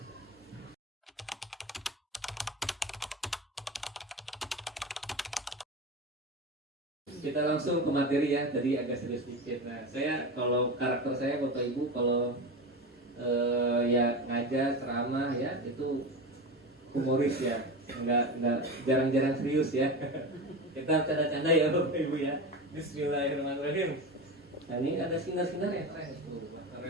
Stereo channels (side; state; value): both; normal; correlation 0.24